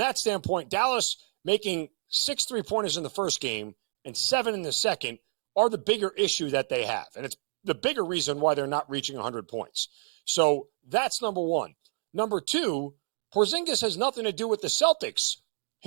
standpoint, Dallas making 6 3-pointers in the first game and 7 in the second are the bigger issue that they have. And it's the bigger reason why they're not reaching 100 points. So that's number one. Number two, Porzingis has nothing to do with the Celtics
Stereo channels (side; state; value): left; silent; digital silence